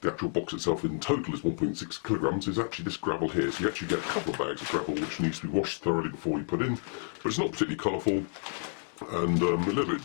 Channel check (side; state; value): right; silent; 58 dB below the other